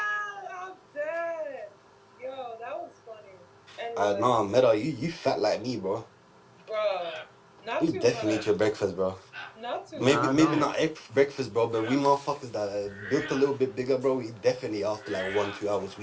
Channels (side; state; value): both; identical; correlation 1.00